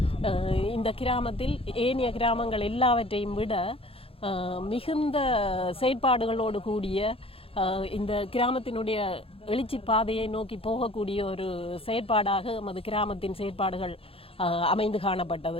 இந்த கிராமத்தில் ஏனைய கிராமங்கள் எல்லாவற்றையும் விட மிகுந்த செயற்பாடுகளோடு கூடிய இந்த கிராமத்தினுடைய எழுச்சி பாதையை நோக்கி போகக்கூடிய ஒரு செயற்பாடாக நமது கிராமத்தின் செயற்பாடுகள் அமைந்து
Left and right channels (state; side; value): late; right; 0.27 ms